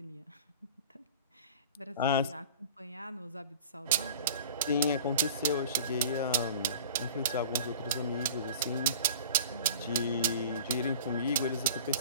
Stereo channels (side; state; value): both; inverted; correlation -0.40